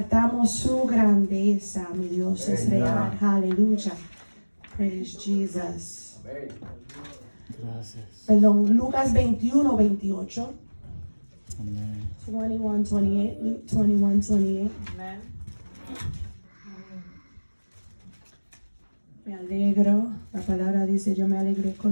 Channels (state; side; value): inverted; both; correlation -1.00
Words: su grandeza. Mi Dios es real. Aleluya. Praise Jesus. Gracias. Perdón, Lucas 21, 28. Amén. 21, 28. Luke 21, 28. Amen. Me alegro. La palabra dice, yo me alegré